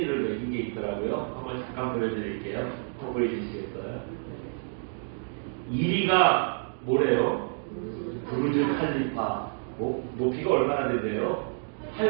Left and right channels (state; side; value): silent; left; 59 dB below the other